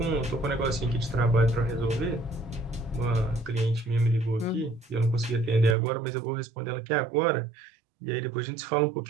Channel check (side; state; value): left; drops out; at 5.8 s